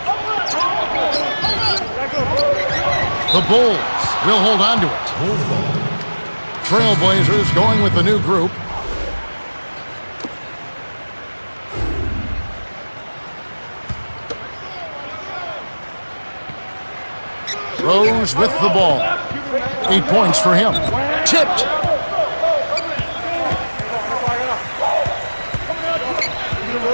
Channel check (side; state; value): both; inverted; correlation -1.00